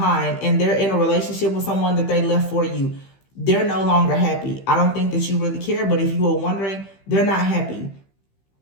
and they're in a relationship with someone that they left for you. They're no longer happy. I don't think that you really care, but if you were wondering, they're not happy.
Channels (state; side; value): late; right; 15 ms